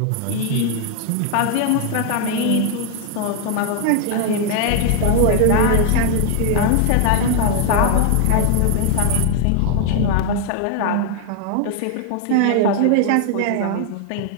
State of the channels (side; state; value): both; different; correlation 0.00